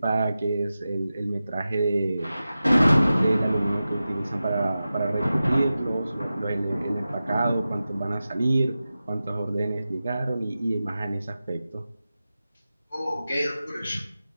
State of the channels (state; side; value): inverted; both; correlation -0.94